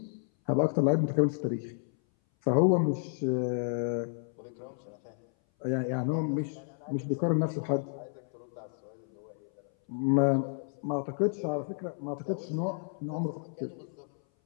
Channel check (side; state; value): right; silent; 57 dB below the other